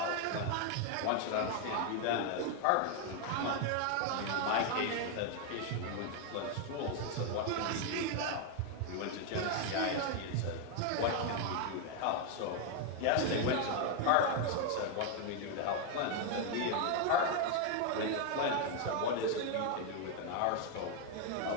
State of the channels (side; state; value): both; different; correlation 0.01